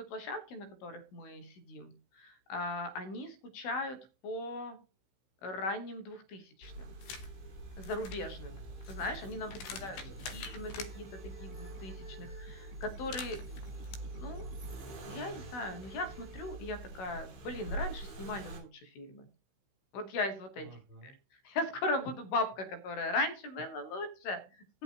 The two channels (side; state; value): right; late; 16 ms